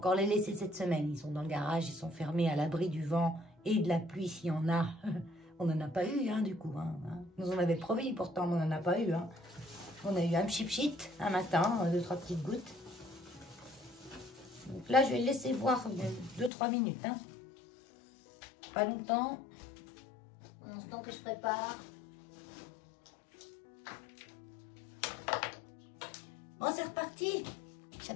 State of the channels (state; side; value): drops out; right; at 16.5 s